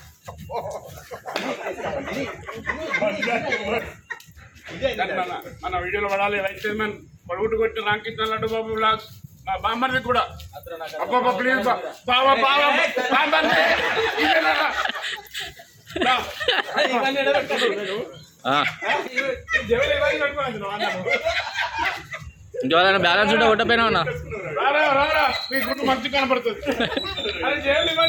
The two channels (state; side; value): identical; both; correlation 1.00